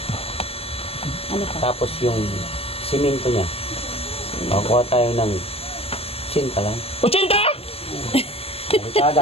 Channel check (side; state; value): right; late; 0.28 ms